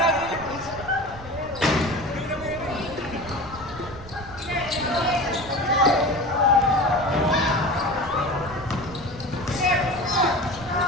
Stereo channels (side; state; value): right; noise; rumble, 17 dB below the sound